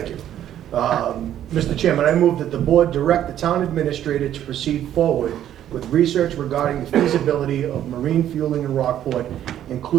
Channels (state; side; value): quieter; left; 11.2 dB